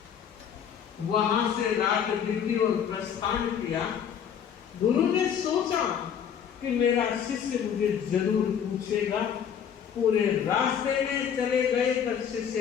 वहां से रात बीती और प्रस्थान किया। गुरु ने सोचा कि मेरा शिष्य मुझे जरूर पूछेगा। पूरे रास्ते में चले गए पर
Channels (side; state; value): right; quieter; 8.2 dB